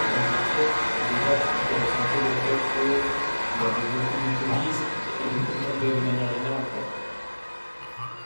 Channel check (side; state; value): both; inverted; correlation -1.00